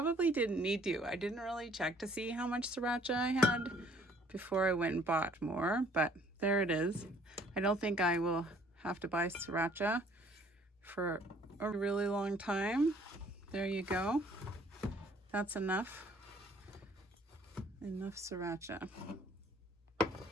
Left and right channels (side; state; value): both; normal; correlation 0.59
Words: didn't need to. I didn't really check to see how much sriracha I had before I went and bought more, but there it is. I don't think I will have to buy sriracha for a really long time. There you go. That's enough. Enough sriracha. It